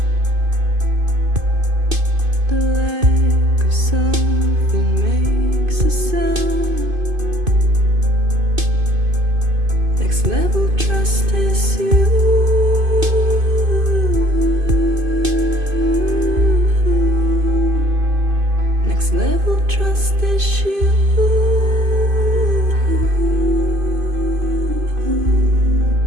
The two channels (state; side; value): late; left; 2.5 ms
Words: The lack of something makes a sound. Next level trust is you. Next level trust is you.